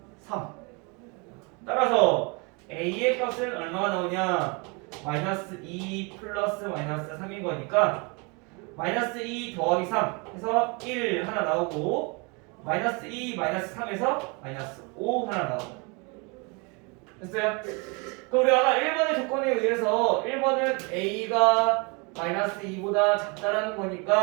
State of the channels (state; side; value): quieter; left; 30.8 dB